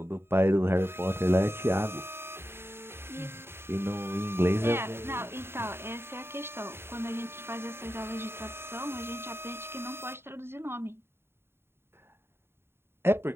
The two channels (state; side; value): late; left; 0.11 ms